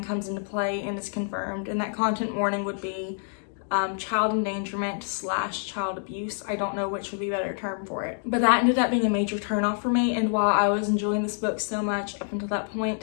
comes into play and is confirmed. And that content warning would be child endangerment / child abuse. I don't know which would be a better term for it. But that ended up being a major turnoff for me, and while I was enjoying this book so much up until that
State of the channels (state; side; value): silent; right; 60 dB below the other